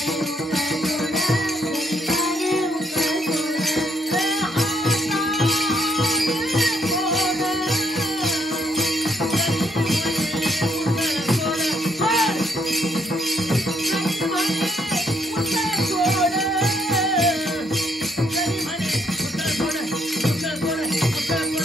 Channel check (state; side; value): normal; both; correlation 0.71